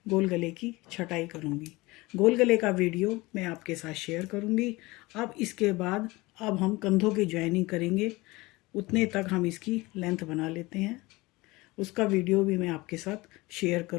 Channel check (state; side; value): quieter; right; 21.9 dB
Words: गोल गले की छटाई करूँगी। गोल गले का वीडियो मैं आपके साथ शेयर करूँगी। अब इसके बाद अब हम कंधों की ज्वाइनिंग करेंगे। उतने तक हम इसकी लेंथ बना लेते हैं, उसका वीडियो भी मैं आपके साथ शेयर